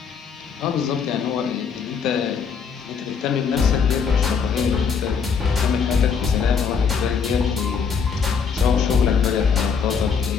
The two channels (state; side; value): quieter; right; 6.2 dB